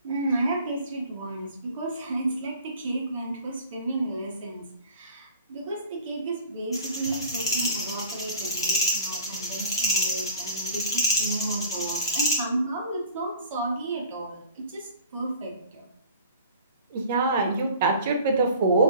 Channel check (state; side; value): inverted; both; correlation -0.45